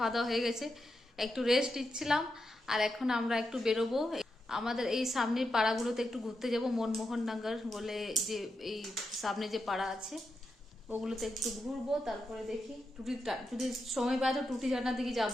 দাওয়া হয়ে গেছে, একটু রেস্ট নিচ্ছিলাম। আর এখন আমরা একটু বেরোবো, আমাদের এই সামনের পাড়াগুলোতে একটু ঘুরতে যাব। মনমোহননগর বলে যে এই সামনে যে পাড়া আছে ওগুলোতে একটু ঘুরবো। তারপরে দেখি যদি সময় পাই তো টুটি ঝর্ণার দিকে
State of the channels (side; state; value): both; normal; correlation 0.86